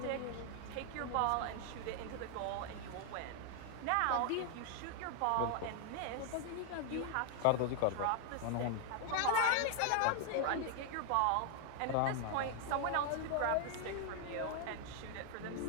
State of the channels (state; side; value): different; both; correlation 0.00